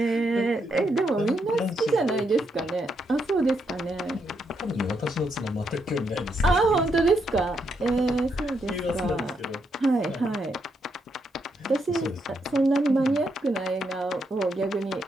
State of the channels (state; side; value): normal; both; correlation 0.79